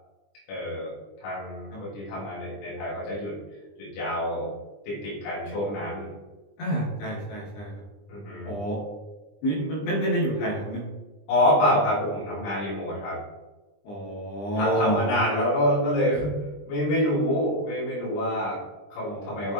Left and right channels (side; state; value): right; late; 20 ms